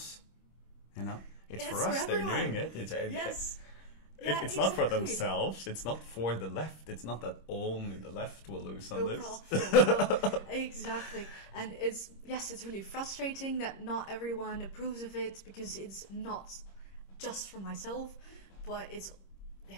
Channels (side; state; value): right; late; 26 ms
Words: It's for us they're doing it. It's not for themselves. It's not for the left. It's not that only the left will lose on this. Exactly. And it's really frustrating that not everyone approves of it, because it's not just for myself, but